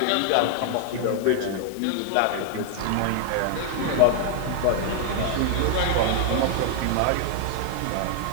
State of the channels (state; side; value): different; both; correlation 0.00